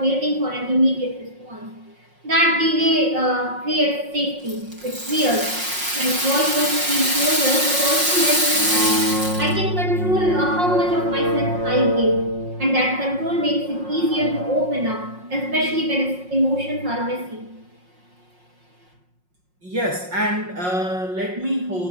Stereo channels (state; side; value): late; left; 5.5 ms